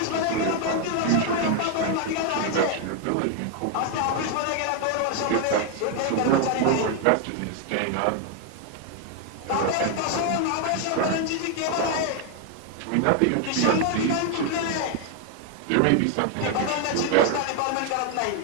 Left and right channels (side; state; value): both; different; correlation 0.00